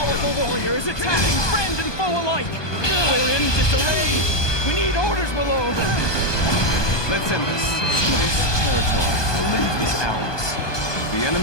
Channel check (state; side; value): late; right; 1.2 ms